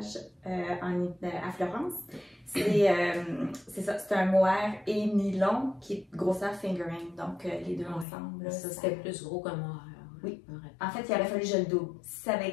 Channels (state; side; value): drops out; right; at 8.1 s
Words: à Florence. C'est ça, c'est un mohair et nylon qui est grosseur fingering, donc les deux ensemble. Là, ça c'était plus gros qu'un mohair. Oui. En fait, il aurait fallu que je le double. Si ça avait